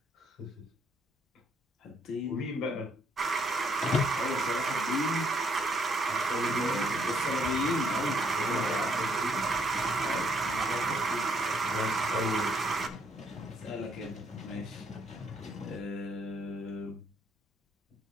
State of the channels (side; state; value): both; normal; correlation 0.69